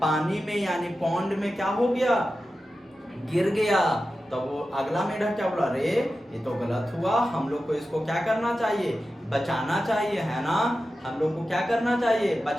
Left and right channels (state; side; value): normal; both; correlation 0.93